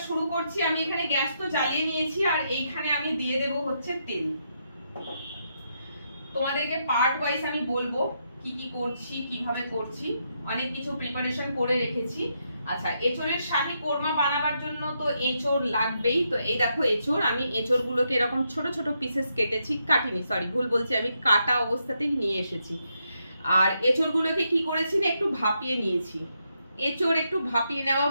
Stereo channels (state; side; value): inverted; both; correlation -0.80